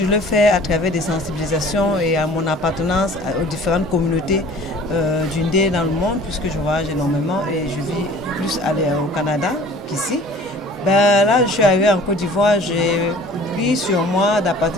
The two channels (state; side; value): normal; both; correlation 0.48